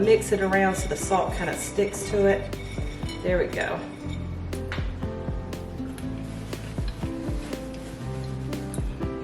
mix it around so the salt kind of sticks to it. There we go.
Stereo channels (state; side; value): identical; both; correlation 1.00